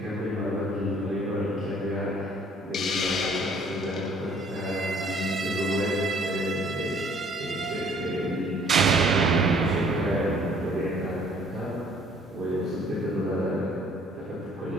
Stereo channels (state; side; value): normal; both; correlation 0.58